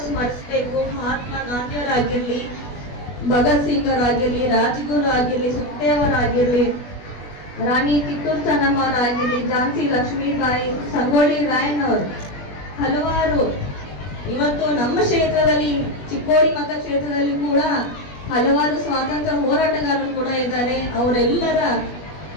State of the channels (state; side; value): late; right; 20 ms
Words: ಸ್ಮರಿಸಬೇಕು. ಮಹಾತ್ಮ ಗಾಂಧಿಯವರಾಗಿರ್ಲಿ, ಭಗತ್ ಸಿಂಗ್ ಅವರಾಗಿರ್ಲಿ, ರಾಜ್ಗುರು ಆಗಿರ್ಲಿ, ಸುಖದೇವರಾಗಿರ್ಲಿ, ರಾಣಿ ಕಿತ್ತೂರು ಚೆನ್ನಮ್ಮ ಅವರಾಗಿರ್ಲಿ, ಝಾನ್ಸಿ ಲಕ್ಷ್ಮೀಬಾಯಿ, ಸಂಗೊಳ್ಳಿ ರಾಯಣ್ಣವರು, ಹಲವಾರು ಇವತ್ತು ನಮ್ಮ ಕ್ಷೇತ್ರದಲ್ಲಿ ಚಿಕ್ಕೋಡಿ ಮತಕ್ಷೇತ್ರದಲ್ಲಿ ಕೂಡ ಹಲವಾರು ಸ್ವಾತಂತ್ರ್ಯ ಹೋರಾಟಗಾರರು ಕೂಡ ಇದ್ದಾರೆ. ಅವರೆಲ್ಲರ